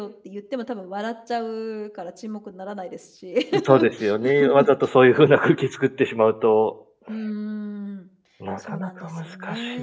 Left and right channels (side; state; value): both; identical; correlation 1.00